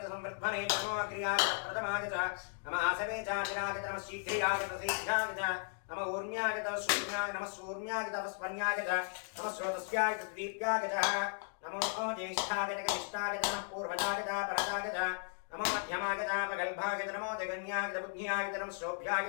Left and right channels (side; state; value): right; silent; 54 dB below the other